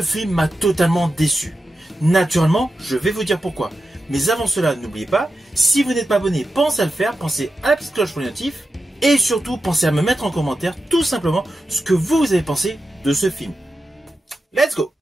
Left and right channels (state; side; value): normal; both; correlation 0.91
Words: film m'a totalement déçu. Naturellement, je vais vous dire pourquoi. Mais avant cela, n'oubliez pas, si vous n'êtes pas abonné, pensez à le faire, pensez à la petite cloche pour les notifs. Et surtout, pensez à me mettre en commentaire tout simplement ce que vous avez pensé de ce film. Let's go!